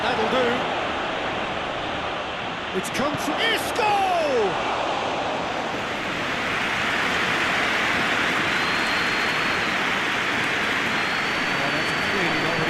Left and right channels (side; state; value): both; identical; correlation 1.00